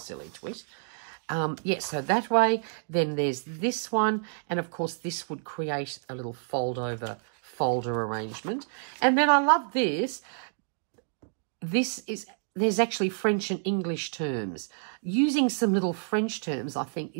twist. Yeah, so that way. Then there's this one, and of course this would create a little folder arrangement. And then I love this. There's actually French and English terms. Using some little French terms, I think,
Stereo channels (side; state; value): left; silent; digital silence